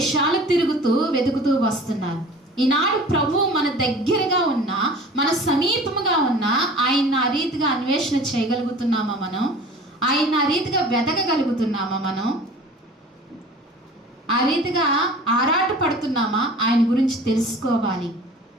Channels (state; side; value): normal; both; correlation 0.43